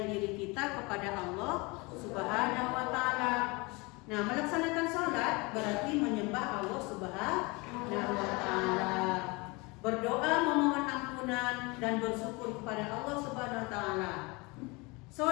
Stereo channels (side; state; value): right; quieter; 26.4 dB